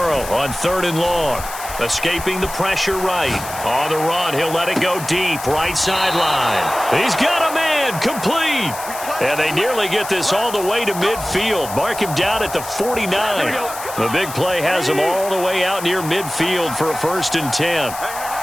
on 3rd and long. Escaping the pressure right. On the run, he'll let it go deep. Right sideline. He's got a man. Complete. And they nearly get this all the way to midfield. Mark him down at the 49. The big play has him all the way out near midfield for a 1st and 10.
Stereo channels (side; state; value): left; noise; hiss, 11 dB below the sound